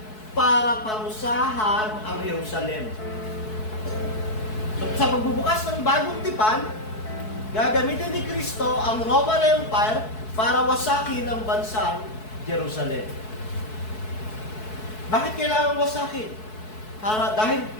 para parusahan ang Jerusalem. So, sa pagbubukas ng bagong tipan, gagamitin ni Kristo ang Roman Empire para wasakin ang bansang Jerusalem. Bakit kailangan wasakin? Dahil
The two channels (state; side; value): late; right; 4.6 ms